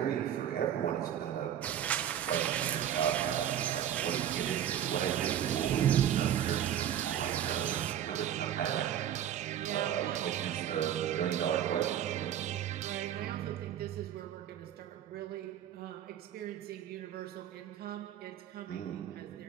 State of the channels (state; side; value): quieter; left; 10.4 dB